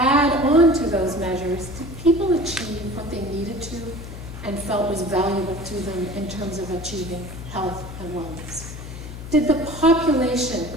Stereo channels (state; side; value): noise; left; hum, 11 dB below the sound